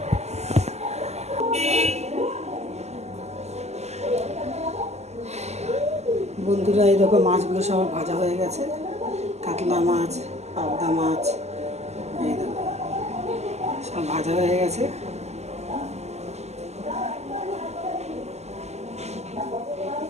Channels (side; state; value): left; late; 0.32 ms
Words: বন্ধুরা, এই দেখো মাছগুলো সব ভাজা হয়ে গেছে। কাতলা মাছ, পাবদা মাছ, এই দেখো সব ভাজা হয়ে গেছে।